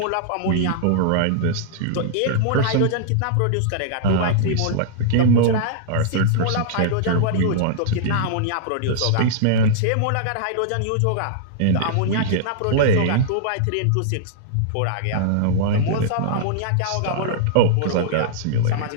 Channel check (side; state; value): both; different; correlation -0.02